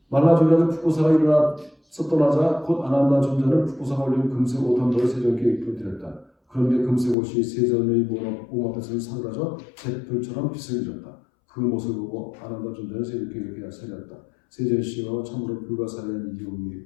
말라주의 아들 푸꾸사가 일어나서 떠나자 곧 아난다 존자는 푸꾸사가 올린 금색 옷 한 벌을 세종께 입혀드렸다. 그런데 금색 옷이 세존의 몸 앞에서 사그라져 잿불처럼 빛을 잃었다. 그 모습을 보고 아난다 존자는 세종께 이렇게 살렸다. 세존이시여 참으로 불가사의한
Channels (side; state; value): right; drops out; at 7.2 s